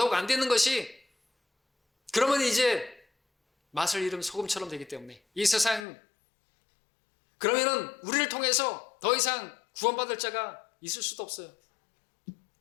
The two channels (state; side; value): drops out; right; at 5.9 s